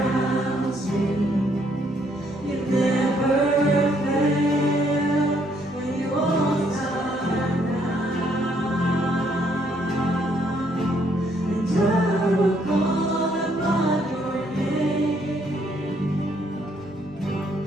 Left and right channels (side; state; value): both; normal; correlation 0.69